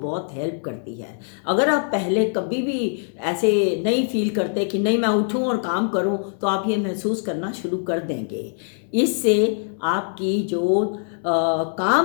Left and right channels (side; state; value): right; silent; 61 dB below the other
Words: हेल्प करती है। अगर आप पहले कभी भी ऐसे नहीं फील करते कि नहीं मैं उठूं और काम करूं, तो आप ये महसूस करना शुरू कर देंगे। इससे आपकी जो